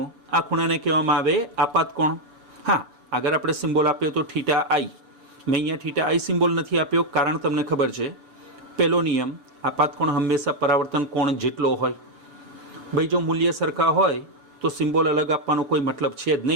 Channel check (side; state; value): left; late; 6.9 ms